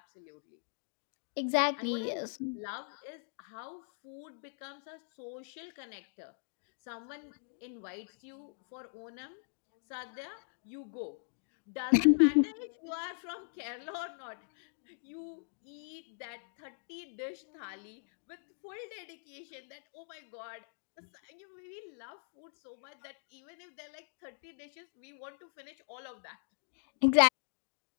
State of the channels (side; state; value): right; silent; digital silence